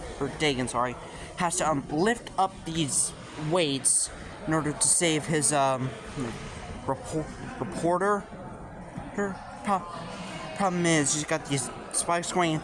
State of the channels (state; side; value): identical; both; correlation 1.00